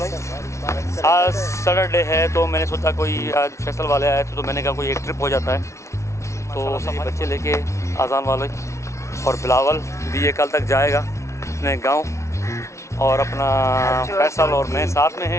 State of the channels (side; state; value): right; late; 0.14 ms